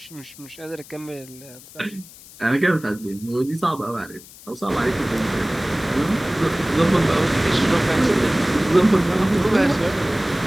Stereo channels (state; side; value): noise; left; hiss, 20 dB below the sound